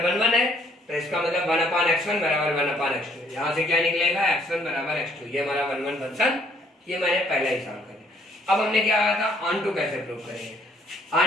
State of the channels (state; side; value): normal; both; correlation 0.64